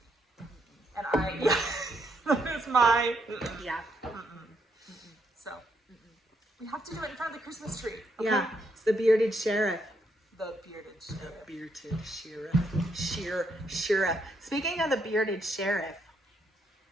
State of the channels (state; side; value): normal; both; correlation 0.76